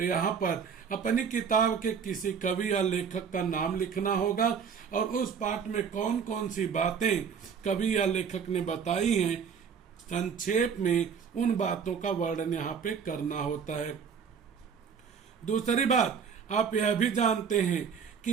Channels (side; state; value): left; quieter; 6.7 dB